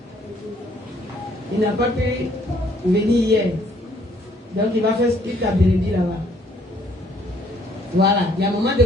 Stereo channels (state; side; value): normal; both; correlation 0.64